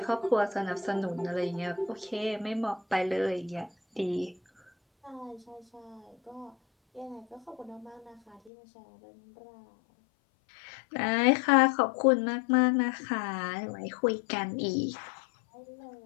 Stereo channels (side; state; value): right; drops out; at 8.5 s